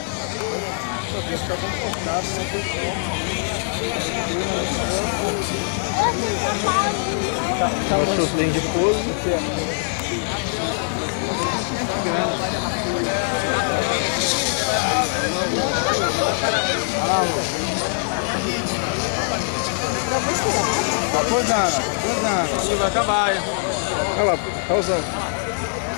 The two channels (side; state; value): right; silent; digital silence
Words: Só que fica confortável, não tem como. O sorteio de pouso. Tá posando. Isso vai acabar, hein? Olha lá, tá usando.